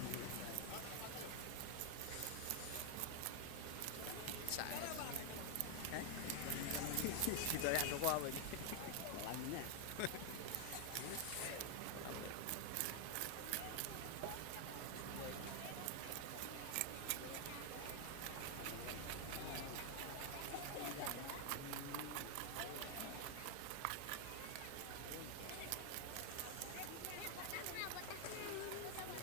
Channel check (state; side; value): different; both; correlation 0.00